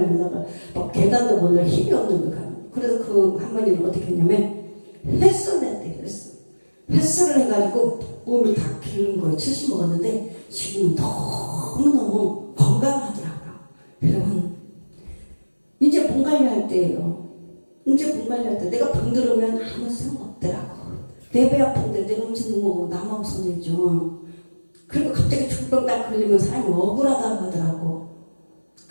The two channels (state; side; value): inverted; both; correlation -1.00